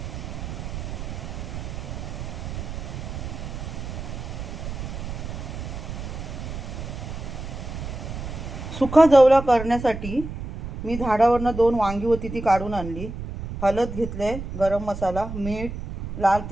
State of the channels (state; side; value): noise; right; rumble, 7 dB below the sound